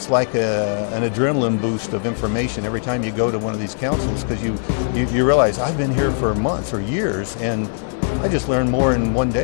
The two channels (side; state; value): right; silent; digital silence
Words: like an adrenaline boost of information every time you go to one of these councils, because you realize I've been here for months or years, and I just learned more in one